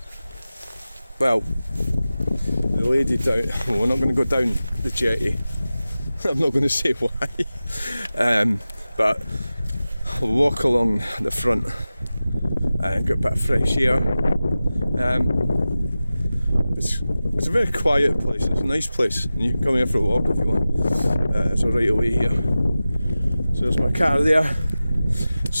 Well, the lady down. Well, we're not going to go down the jetty. I'm not going to say why. But I'll walk along the front and get a bit of fresh air. It's a very quiet place. It's a nice place, and you can come here for a walk if you want. It's a right away here. So there's my car there.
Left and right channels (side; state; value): both; inverted; correlation -0.95